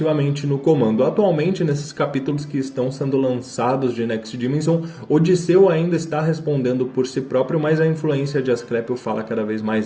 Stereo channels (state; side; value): identical; both; correlation 1.00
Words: no comando? Atualmente, nesses capítulos que estão sendo lançados de Next Dimension, Odisseu ainda está respondendo por si próprio, mas a influência de Asclépio fala cada vez